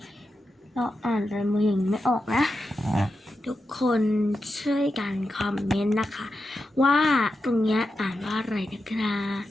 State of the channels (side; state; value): both; normal; correlation 0.89